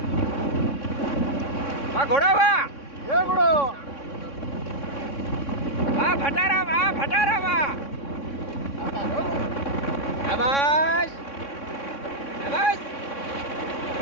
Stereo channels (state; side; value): late; right; 3.6 ms